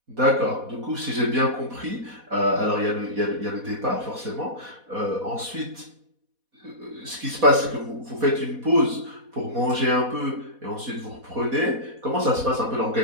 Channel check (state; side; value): late; left; 4.1 ms